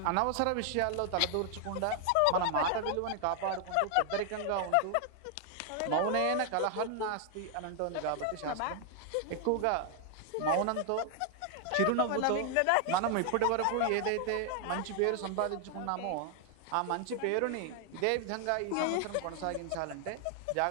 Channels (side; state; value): both; different; correlation 0.00